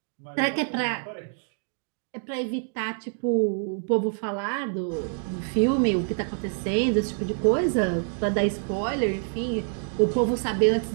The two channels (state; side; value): silent; left; 61 dB below the other